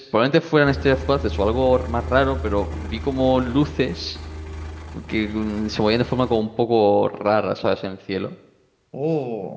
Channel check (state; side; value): identical; both; correlation 1.00